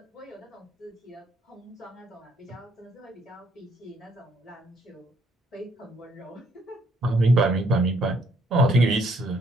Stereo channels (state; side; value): normal; both; correlation 0.68